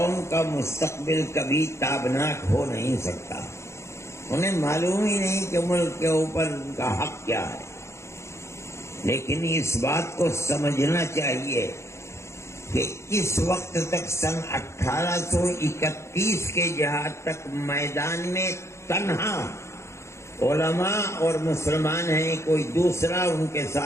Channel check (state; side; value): late; right; 0.13 ms